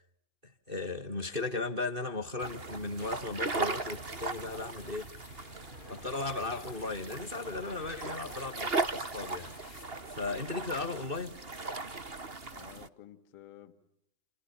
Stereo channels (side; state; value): left; late; 2.8 ms